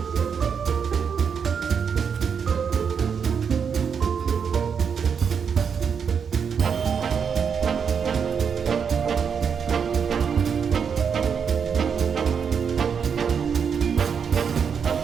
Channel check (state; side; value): quieter; left; 6.7 dB